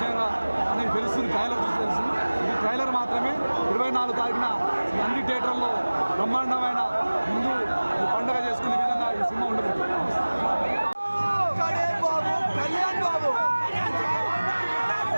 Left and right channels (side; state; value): both; inverted; correlation -1.00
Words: అనేది తెలుస్తుంది. ట్రైలర్ చూసి తెలుస్తుంది. ఇది ట్రైలర్ మాత్రమే. 24 తారీఖున నంది థియేటర్లో బ్రహ్మాండమైన హిందూ పండుగ చేసుకునే విధంగా ఈ సినిమా ఉండబోతుంది.